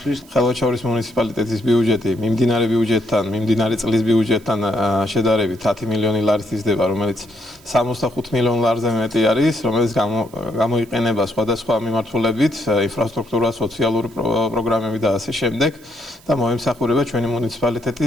ხელვაჩაურის მუნიციპალიტეტის ბიუჯეტი მიმდინარე წლის ბიუჯეტთან შედარებით 10 მილიონი ლარით იზრდება, რომელიც 65 მილიონ ლარზე მეტი არის, რომელიც გამოიყენება სხვადასხვა მიმართულებით, ინფრასტრუქტურა, სოციალური პროგრამები და ასე შემდეგ და მოემსახურება ჩვენი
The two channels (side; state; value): right; noise; hiss, 26 dB below the sound